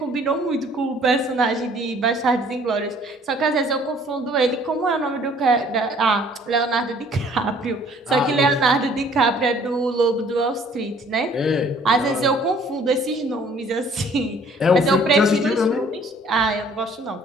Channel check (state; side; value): normal; both; correlation 0.57